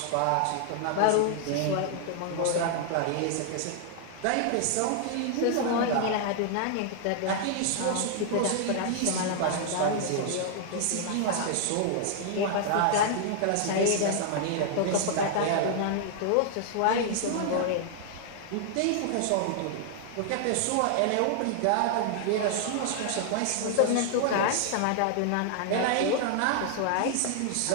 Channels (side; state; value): both; different; correlation 0.00